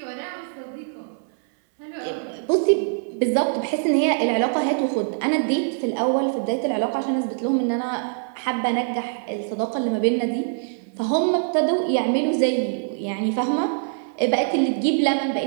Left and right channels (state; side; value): silent; left; 63 dB below the other